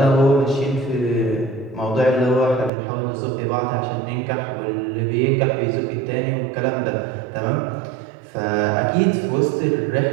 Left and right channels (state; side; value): drops out; left; at 2.7 s